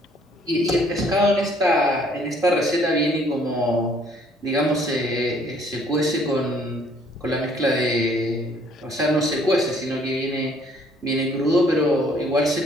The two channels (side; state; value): both; normal; correlation 0.62